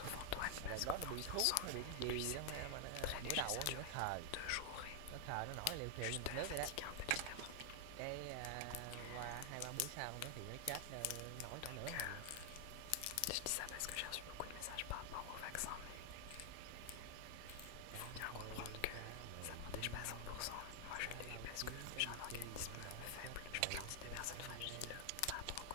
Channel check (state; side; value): different; both; correlation 0.00